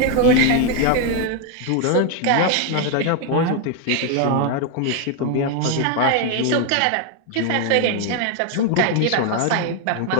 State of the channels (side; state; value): both; different; correlation 0.01